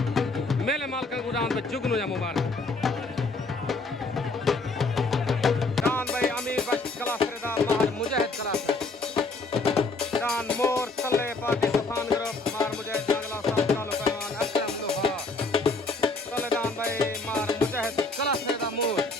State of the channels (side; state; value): right; quieter; 3.4 dB